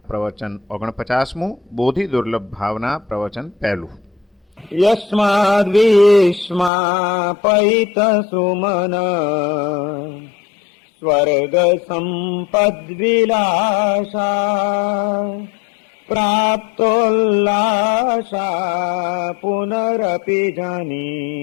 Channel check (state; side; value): drops out; right; at 6.7 s